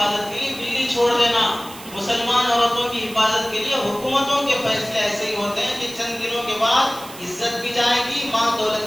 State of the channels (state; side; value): noise; right; hiss, 16 dB below the sound